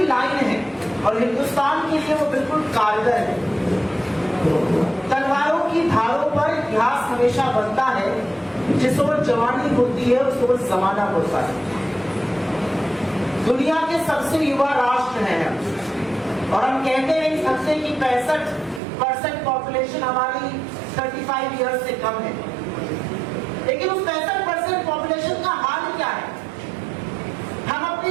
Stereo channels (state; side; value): drops out; left; at 18.8 s